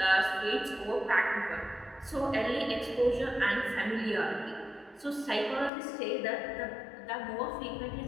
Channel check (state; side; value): drops out; right; at 5.7 s